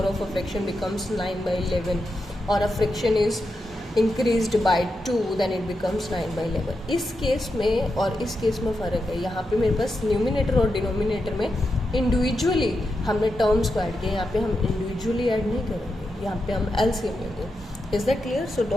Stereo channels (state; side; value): normal; both; correlation 0.87